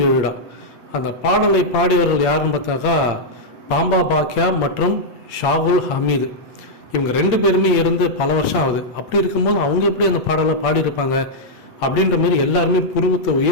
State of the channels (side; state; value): right; late; 8.5 ms